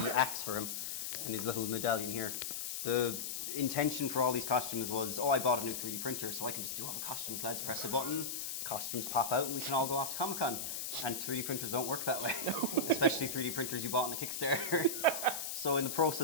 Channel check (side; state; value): left; noise; hiss, 4 dB below the sound